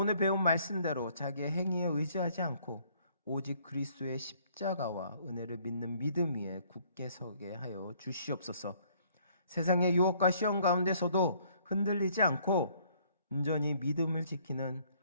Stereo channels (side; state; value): both; inverted; correlation -0.63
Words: 배운 말씀대로 자기의 행위에 의지하지 않고 오직 그리스도의 십자가와 은혜를 믿는 믿음 위에 굳게 서게 하여 주시옵소서. 세상의 유혹과 시험 가운데서도 흔들리지 않고 온전히 믿음을 지키는